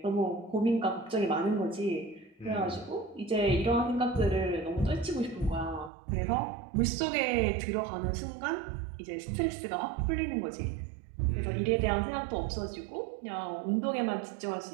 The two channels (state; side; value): drops out; left; at 5.9 s